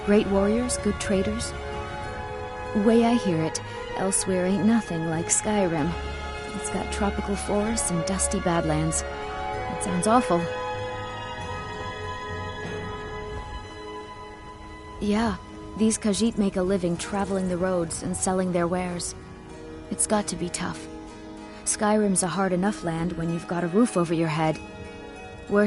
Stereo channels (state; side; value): identical; both; correlation 1.00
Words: Great warriors, good traders. Way I hear it, elsewhere ain't nothing like Skyrim. It's got tropical forests and dusty badlands. It sounds awful. Yeah, these Khajiit make a living traveling the roads and selling their wares. It's got to be tough. Skyrim's a hard enough land when you've got a roof over your head.